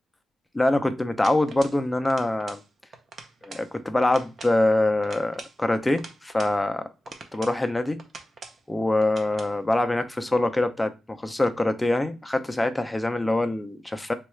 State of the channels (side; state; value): both; normal; correlation 0.96